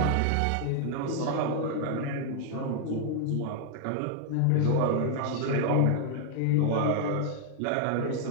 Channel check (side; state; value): both; different; correlation 0.00